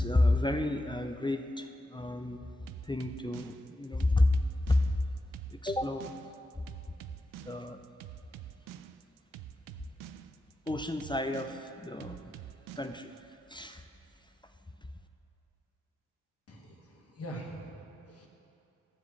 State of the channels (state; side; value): normal; both; correlation 0.89